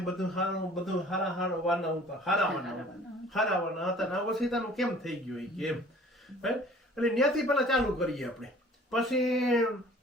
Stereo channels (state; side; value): normal; both; correlation 0.50